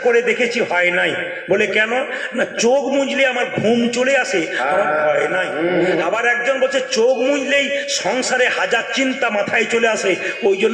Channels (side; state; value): both; identical; correlation 1.00